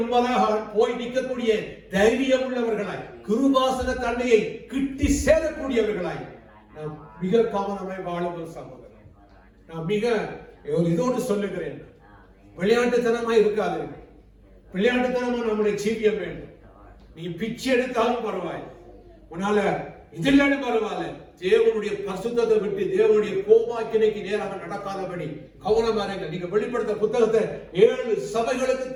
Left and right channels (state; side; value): identical; both; correlation 1.00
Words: முன்பதாக போய் நிற்கக்கூடிய தைரியம் உள்ளவர்களாய், கிருபாசன தன்மையை கிட்டி சேரக்கூடியவர்களாய் நாம் மிக கவனமாய் வாழும் சகோதரர். நான் மிக இதோடு சொல்லுகிறேன், விளையாட்டுத்தனமாய் இருக்காது. விளையாட்டுத்தனமா நம்முடைய ஜீவியம் வேண்டும். நீ பிச்சை எடுத்தாலும் பரவாயில்லை, உன்னால இதெல்லாம் பரவாயில்ல, தேவனுடைய பரிசுத்தத்தை விட்டு தேவனுடைய கோபாக்கினைக்கு நேராக நடக்காதபடி கவனமா இருங்க. நீங்க வெளிப்படுத்த புத்தகத்தை 7 சபைகளுக்கு